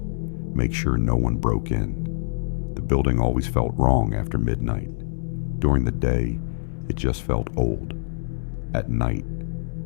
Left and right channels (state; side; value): silent; right; digital silence